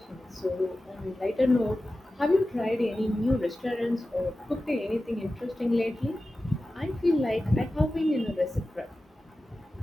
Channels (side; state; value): both; normal; correlation 0.94